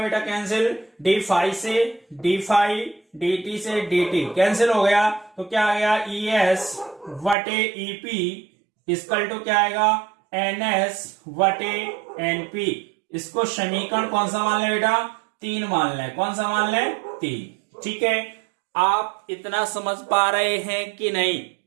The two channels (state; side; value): drops out; left; at 7.4 s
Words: कैंसिल। डी फाइव से डी फाइव, डी टी से डी टी कैंसिल हो गया, तो क्या आ गया? ई एस वटे ईपी इसकल टू क्या आएगा? एन एस वटे एनपी। इसको समीकरण कौन सा मान ले बेटा? 3 मान ले। कौन सा मान ले? 3। ठीक है, आप इतना समझ पा रहे हैं कि नहीं?